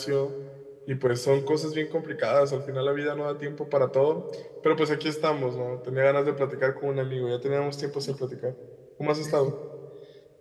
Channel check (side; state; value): both; identical; correlation 1.00